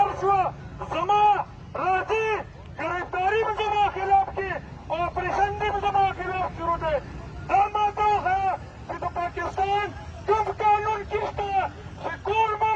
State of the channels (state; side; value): identical; both; correlation 1.00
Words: شوه زما راځي ګرفتاري به زما خلاف کې او اپریشن دې به زما خلاف شروع دی. دا ماته وښیه چې د پاکستان کوم قانون کې شته چې ټول